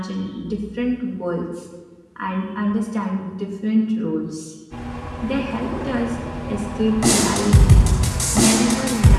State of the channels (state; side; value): identical; both; correlation 1.00